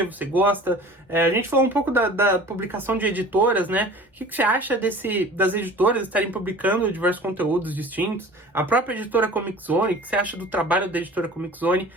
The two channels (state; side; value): normal; both; correlation 0.43